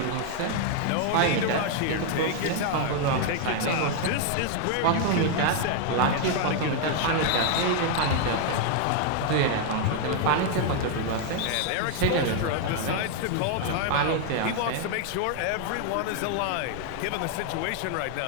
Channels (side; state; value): both; different; correlation 0.00